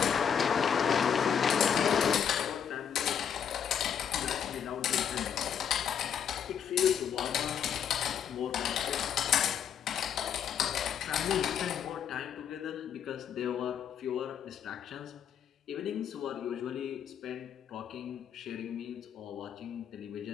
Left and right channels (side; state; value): right; quieter; 8.2 dB